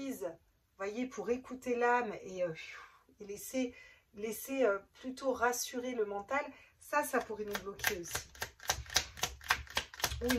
vous voyez, pour écouter l'âme et laisser plutôt rassurer le mental, ça pourrait nous bloquer aussi. Ou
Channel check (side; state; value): both; identical; correlation 1.00